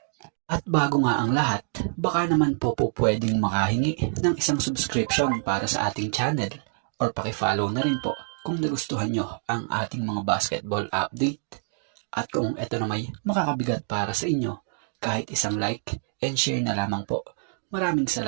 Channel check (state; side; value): silent; left; digital silence